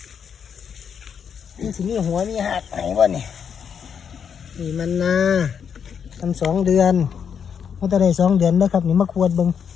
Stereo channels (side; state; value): right; quieter; 7.4 dB